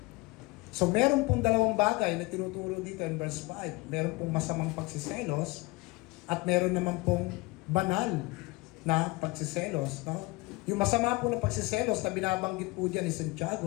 So, meron pong dalawang bagay na tinuturo dito in verse 5. Meron pong masamang pagsiselos, at meron naman pong banal na pagsiselos, no? Yung masama po na pagsiselos na binabanggit po dyan ni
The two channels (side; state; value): right; quieter; 23.4 dB